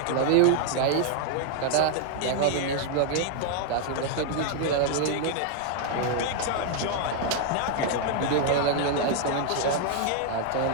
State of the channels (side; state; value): both; different; correlation 0.00